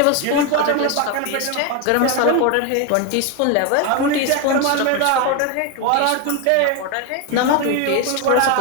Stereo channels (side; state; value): both; different; correlation 0.02